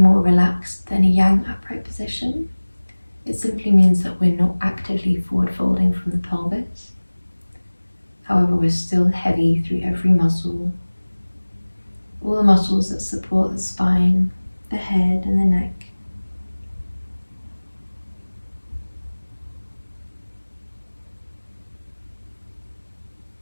relaxed than a yang upright position. It simply means that we're not actively forward folding from the pelvis. However, we're still heavy through every muscle, all the muscles that support the spine, the head and the neck.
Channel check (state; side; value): inverted; both; correlation -1.00